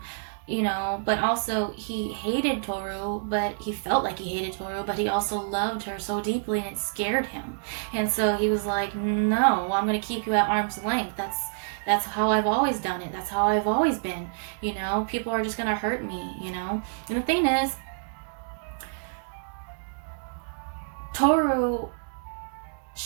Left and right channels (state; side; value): silent; left; digital silence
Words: you know, but also he hated Toru, but he felt like he hated Toru, but he also loved her so deeply, and it scared him. And so he was like, no, I'm going to keep you at arm's length. That's how I've always done it. That's how I've always been. You know, people are just going to hurt me, you know. And the thing is, Toru,